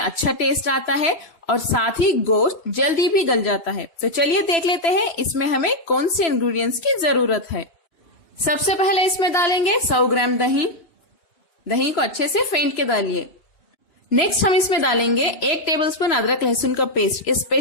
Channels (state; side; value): late; right; 3.0 ms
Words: टेस्ट आता है और साथ ही गोश्त जल्दी भी गल जाता है। तो चलिए देख लेते हैं इसमें हमें कौन से इंग्रेडिएंट्स की जरूरत है। सबसे पहले इसमें डालेंगे 100 ग्राम दही। दही को अच्छे से फेंट के डालिए। नेक्स्ट हम इसमें डालेंगे 1 टेबलस्पून अदरक लहसुन का पेस्ट। ये